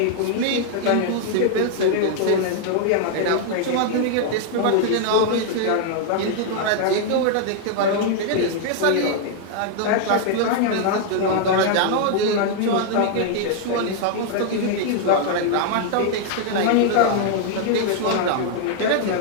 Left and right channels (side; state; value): both; different; correlation 0.00